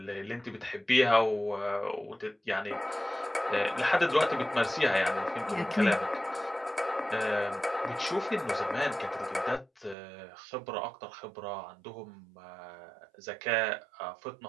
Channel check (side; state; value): left; drops out; at 10.0 s